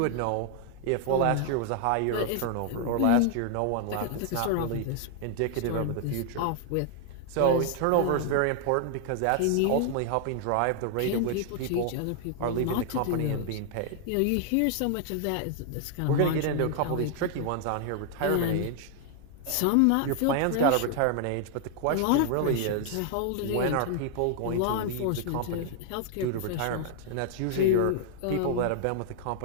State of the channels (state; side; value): different; both; correlation 0.00